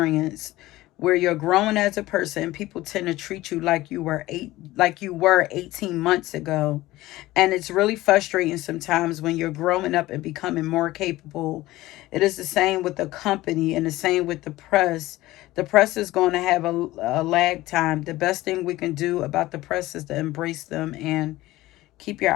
where you're growing as a person. People tend to treat you like you were 18 months ago. And it's really frustrating sometimes when you're growing up and becoming more capable. It is the same with the company and the same with the press. The press is going to have a lag time. The best thing we can do about the press is to embrace them and keep your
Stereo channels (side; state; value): right; quieter; 17.4 dB